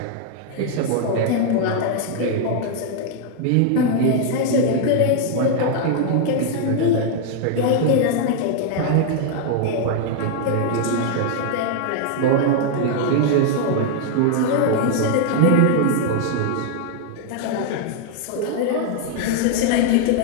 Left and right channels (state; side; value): different; both; correlation 0.00